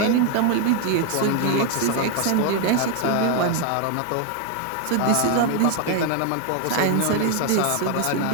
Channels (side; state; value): both; different; correlation 0.00